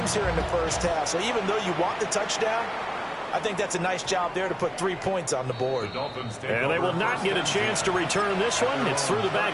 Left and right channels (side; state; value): both; identical; correlation 1.00